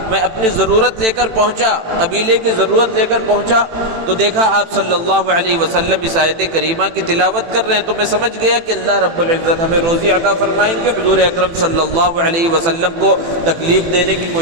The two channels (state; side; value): late; left; 18 ms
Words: میں اپنی ضرورت لے کر پہنچا، قبیلے کی ضرورت لے کر پہنچا تو دیکھا آپ صلی اللہ علیہ وسلم اس آیت کریمہ کی تلاوت کر رہے ہیں، تو میں سمجھ گیا کہ اللہ رب العزت ہمیں روزی عطا فرمائیں گے، حضور اکرم صلی اللہ علیہ وسلم کو تکلیف دینے کی